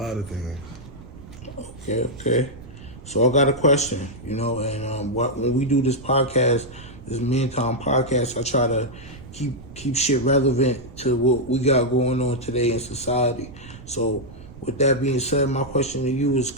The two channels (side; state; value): right; noise; rumble, 17 dB below the sound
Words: of things. Okay. So I got a question, and when we do this podcast, this Man Time Podcast, I try to keep shit relevant to what we got going on today in society. So with that being said, my question to you is